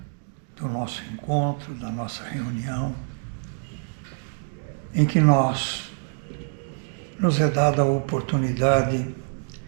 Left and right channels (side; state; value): left; silent; 61 dB below the other